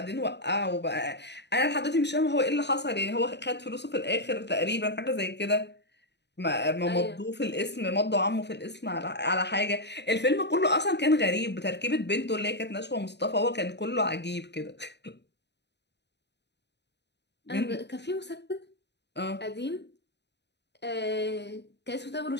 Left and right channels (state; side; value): late; right; 0.50 ms